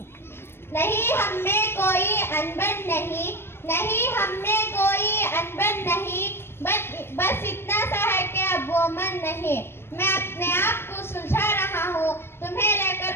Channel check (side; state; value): right; late; 0.12 ms